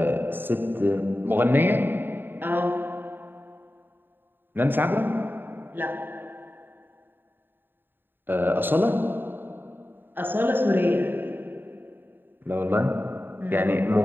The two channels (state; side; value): late; left; 0.096 ms